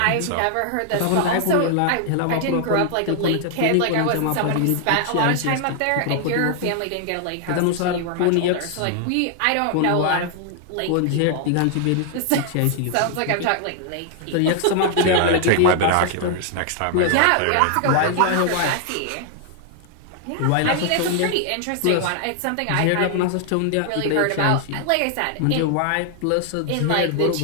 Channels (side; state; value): both; different; correlation 0.00